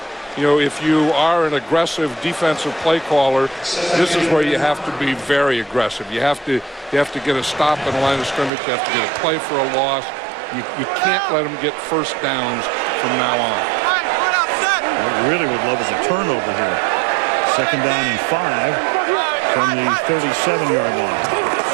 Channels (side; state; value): left; drops out; at 8.5 s